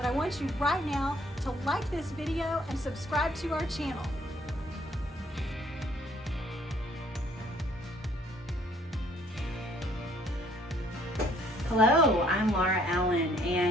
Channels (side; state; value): both; normal; correlation 0.62